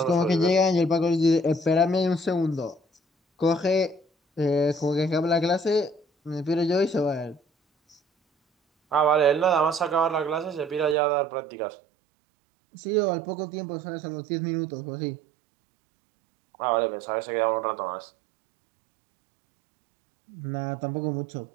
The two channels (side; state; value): left; drops out; at 11.0 s